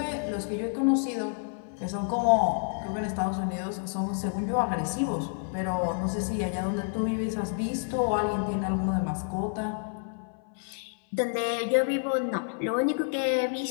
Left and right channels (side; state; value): right; silent; 59 dB below the other